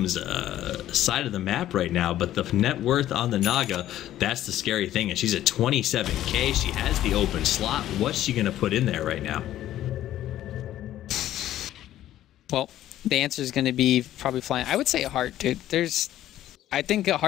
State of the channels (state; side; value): quieter; right; 13.0 dB